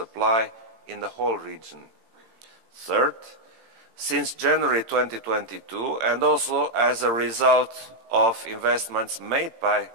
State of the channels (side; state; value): left; late; 18 ms